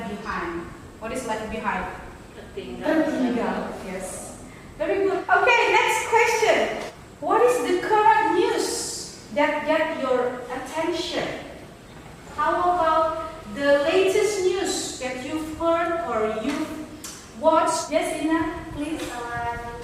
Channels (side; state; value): both; identical; correlation 1.00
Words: behind. What is left behind? Tertinggal. Yes. Very good. Okay, next question. What is the current news that get your attention? How about the latest news that you've heard or you've watched? Yes, Ina, please.